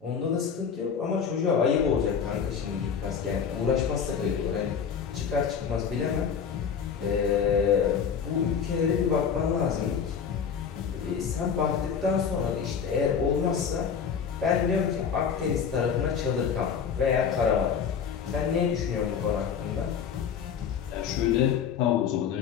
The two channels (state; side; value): quieter; right; 7.0 dB